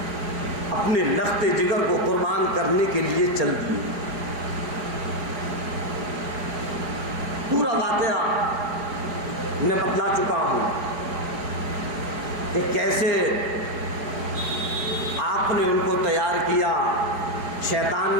اپنے لخت جگر کو قربان کرنے کے لیے چل دیے۔ پورا واقعہ میں بتلا چکا ہوں کہ کیسے آپ نے ان کو تیار کیا، شیطان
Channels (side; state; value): left; late; 4.9 ms